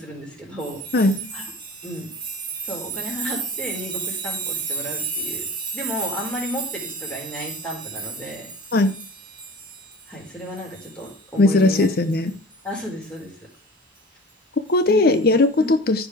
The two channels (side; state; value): both; normal; correlation 0.39